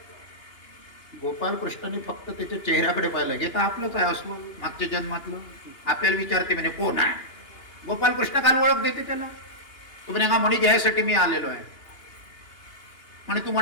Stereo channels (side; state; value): right; late; 2.9 ms